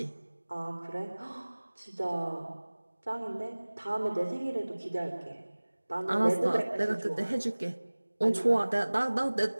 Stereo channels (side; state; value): both; inverted; correlation -1.00